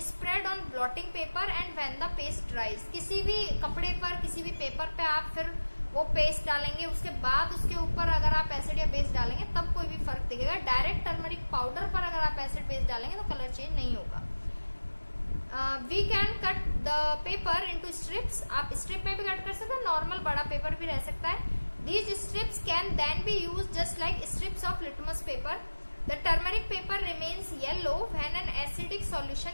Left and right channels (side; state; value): both; inverted; correlation -1.00